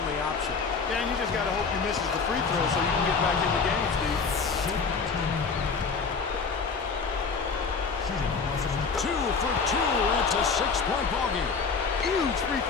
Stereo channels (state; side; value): quieter; right; 5.0 dB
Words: option. Yeah, and you just got to hope he misses the free throw so you can get back in the game, Steve. 2 for 2, and it's a 6-point ballgame. Huge free